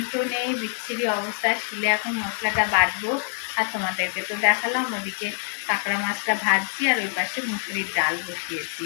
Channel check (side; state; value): right; silent; 62 dB below the other